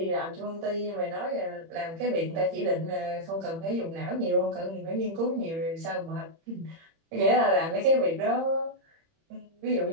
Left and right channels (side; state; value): left; late; 30 ms